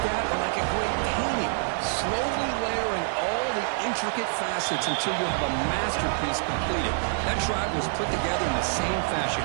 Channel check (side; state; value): left; silent; 60 dB below the other